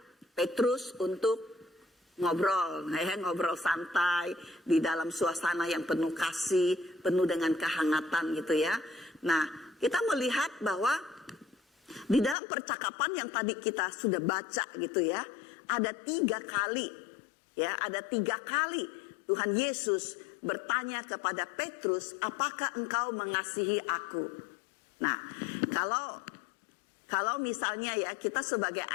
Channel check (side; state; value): right; drops out; at 12.4 s